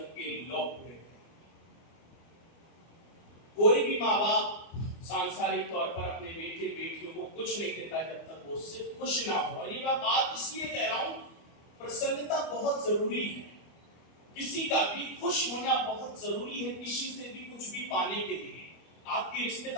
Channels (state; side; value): late; right; 24 ms